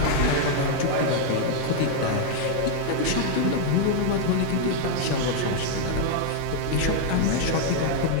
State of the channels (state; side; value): different; both; correlation 0.00